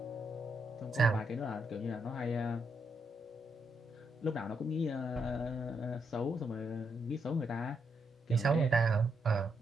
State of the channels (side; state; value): both; normal; correlation 0.79